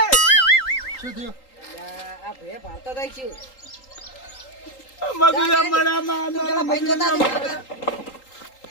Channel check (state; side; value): late; right; 3.8 ms